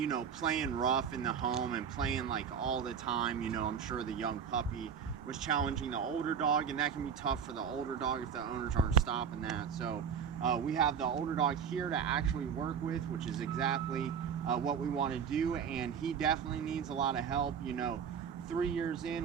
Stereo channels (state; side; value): quieter; left; 7.3 dB